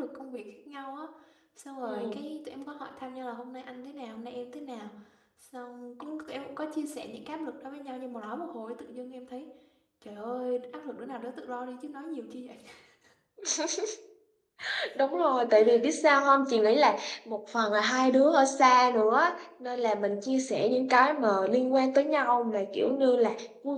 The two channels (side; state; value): both; identical; correlation 1.00